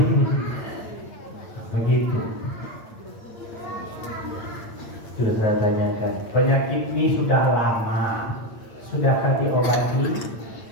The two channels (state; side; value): late; right; 8.9 ms